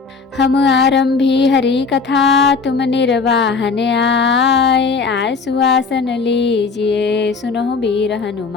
हम आरंभी हरि कथा, तुम निर्वाहन आए सुहासन लीजिए, सुनो वीर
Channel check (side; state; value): right; quieter; 4.8 dB